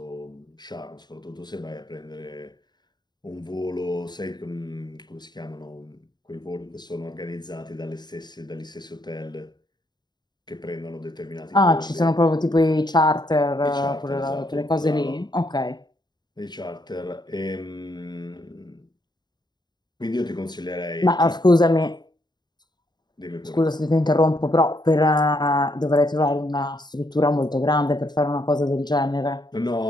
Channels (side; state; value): right; late; 0.21 ms